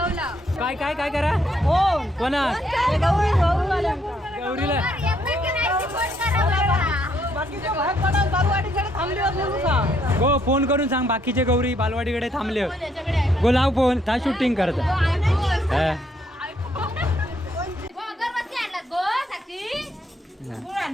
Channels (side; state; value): both; normal; correlation 0.71